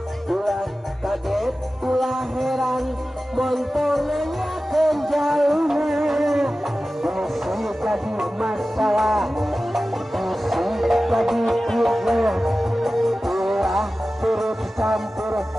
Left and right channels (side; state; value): both; normal; correlation 0.95